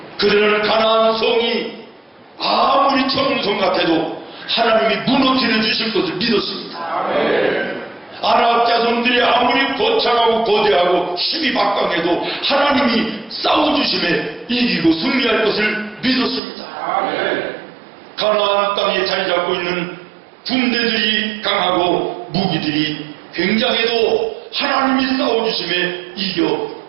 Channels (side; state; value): left; drops out; at 16.4 s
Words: 그들은 가나안 성이 아무리 청성 같아도 하나님이 무너뜨려 주실 것을 믿었습니다. 아랍 자손들이 아무리 거창하고 거대하고 힘이 막강해도 하나님이 싸워주심에 이기고 승리할 것을 믿었습니다. 가나안 땅에 자리 잡고 있는 군대들이 강하고 무기들이 굉장해도 하나님이 싸워주심에 이겨